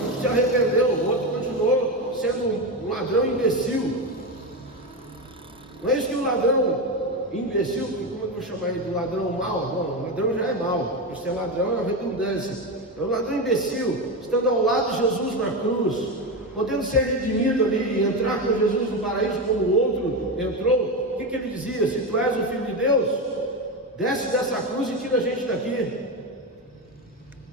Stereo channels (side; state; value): both; normal; correlation 0.15